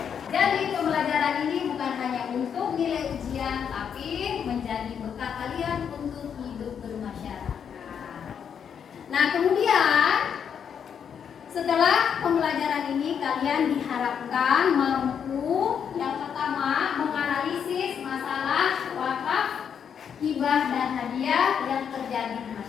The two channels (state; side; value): quieter; right; 7.7 dB